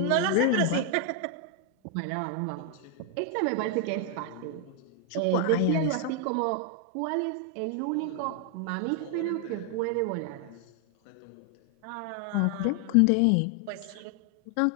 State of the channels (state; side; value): different; both; correlation 0.00